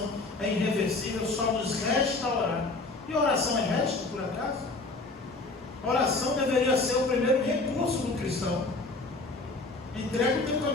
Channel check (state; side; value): quieter; right; 3.3 dB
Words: é irreversível, só nos resta orar. E oração é resto, por acaso? Oração deveria ser o primeiro recurso do cristão. Entrega o teu